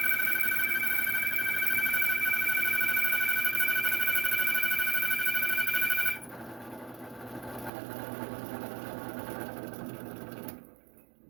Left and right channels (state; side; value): drops out; left; at 7.7 s